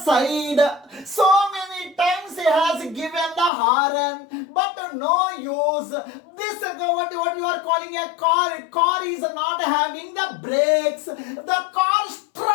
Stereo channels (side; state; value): right; drops out; at 3.5 s